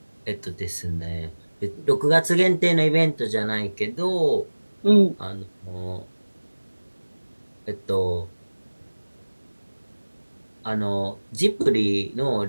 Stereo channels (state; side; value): inverted; both; correlation -1.00